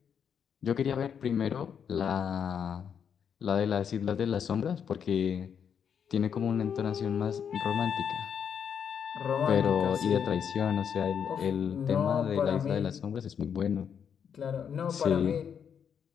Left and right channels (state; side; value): quieter; right; 7.7 dB